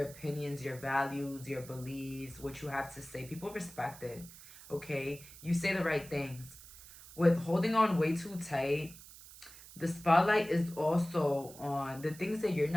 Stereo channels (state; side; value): noise; right; hiss, 18 dB below the sound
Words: opinions, your values, your beliefs, what you have to say. People respect it, okay? You say the right things. With holding on way too tight, the spotlight is also on the things that you're